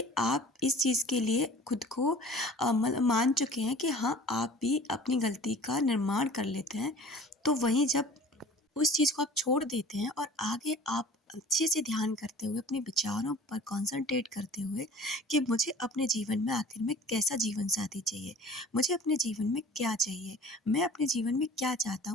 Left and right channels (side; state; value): both; normal; correlation 0.45